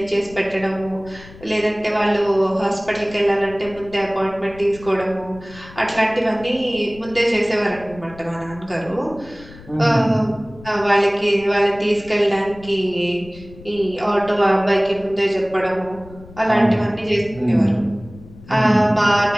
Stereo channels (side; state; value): left; noise; rumble, 19 dB below the sound